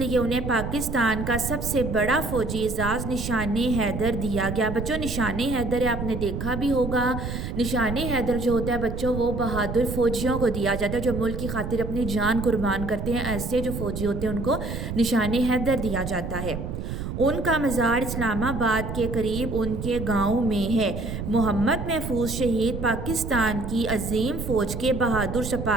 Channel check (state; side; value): noise; right; rumble, 5 dB below the sound